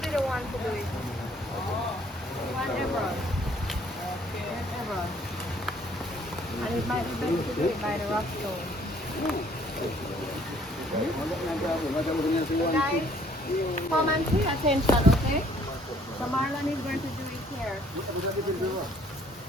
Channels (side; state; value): both; normal; correlation 0.61